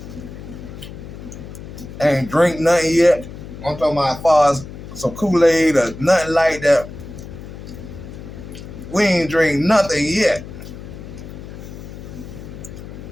Ain't drink nothing yet. I'm talking about as far as some Kool-Aid or nothing like that. We ain't drink nothing yet.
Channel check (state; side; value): noise; left; hum, 13 dB below the sound